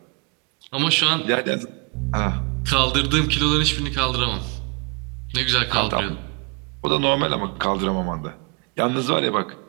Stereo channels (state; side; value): quieter; left; 32.5 dB